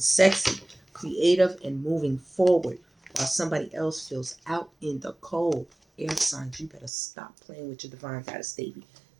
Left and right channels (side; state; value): left; drops out; at 6.9 s